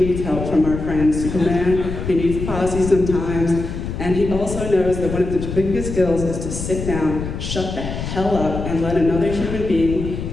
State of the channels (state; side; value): noise; left; rumble, 6 dB below the sound